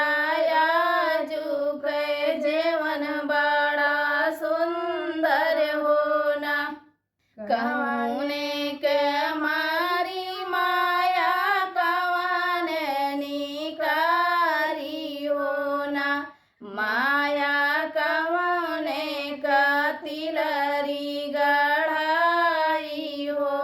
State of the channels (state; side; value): identical; both; correlation 1.00